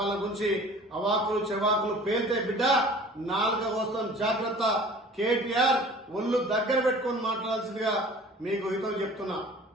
గురించి అవాకులు చెవాకులు పేల్తే బిడ్డ నాలుక వస్తాం. జాగ్రత్త. కేటీఆర్ ఒళ్ళు దగ్గర పెట్టుకొని మాట్లాడాల్సిందిగా మీకు హితం చెప్తున్నా.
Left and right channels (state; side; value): normal; both; correlation 0.46